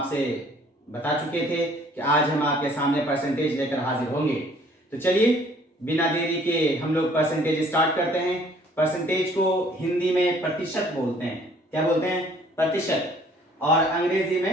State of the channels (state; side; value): normal; both; correlation 0.57